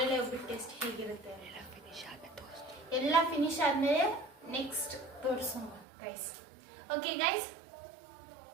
ಒಬ್ಬಿಟ್ಟು ಟೇಸ್ಟ್ ಹೇಗಿರುತ್ತೆ. ಎಲ್ಲ ಫಿನಿಶ್ ಆದ್ಮೇಲೆ ನೆಕ್ಸ್ಟ್ ತೋರಿಸೋಣ guys. Okay guys.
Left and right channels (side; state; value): left; drops out; at 5.9 s